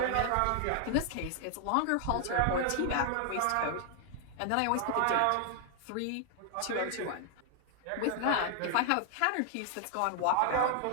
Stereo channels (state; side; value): different; both; correlation 0.00